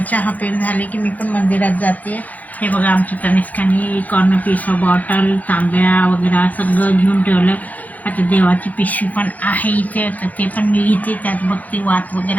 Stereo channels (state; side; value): late; right; 0.079 ms